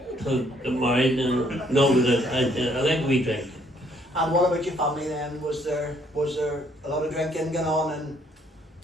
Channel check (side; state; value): both; normal; correlation 0.66